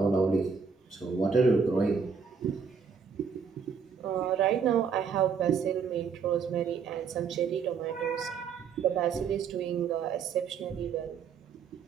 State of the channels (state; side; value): quieter; left; 6.1 dB